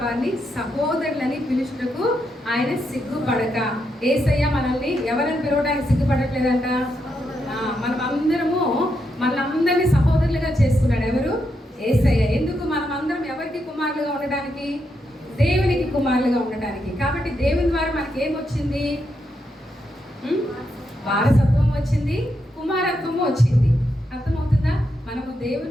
వారిని సహోదరులని పిలుచుటకు ఆయన సిగ్గుపడక. యేసయ్య మనల్ని ఎవరిని పిలవడానికి సిగ్గుపడట్లేదంట. మనలందరినీ సహోదరులుగా చేసుకున్నాడు. ఎవరు? యేసయ్య. ఎందుకు? మనమందరం ఎవరికి కుమారులుగా ఉండడానికి? దేవునికి కుమారులుగా ఉండడానికి. కాబట్టి దేవుని ద్వారా మనకి ఏమొచ్చింది? వారసత్వం వచ్చింది, కుమారత్వము వచ్చింది. అర్థమవుతుందా? మనము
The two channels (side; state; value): both; normal; correlation 0.82